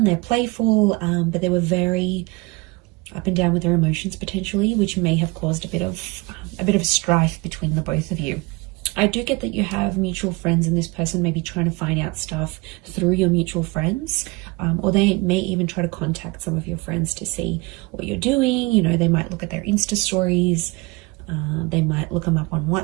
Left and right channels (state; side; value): quieter; left; 25.1 dB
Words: they're playful, but they were very up and down with their emotions potentially, which may have caused a bit of strife between the both of you. I do get that you have mutual friends and this person may be trying to find out stuff through your mutual friends, or they may even try to contact some of your friends to see what you're doing. You know, they might look at their Insta stories, they might look them up on